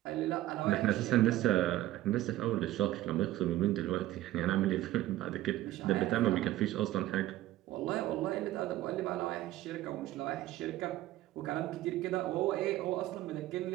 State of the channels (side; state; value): left; quieter; 15.2 dB